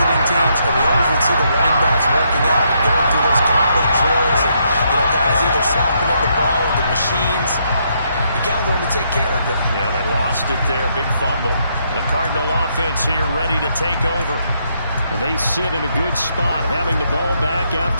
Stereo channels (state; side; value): inverted; both; correlation -0.75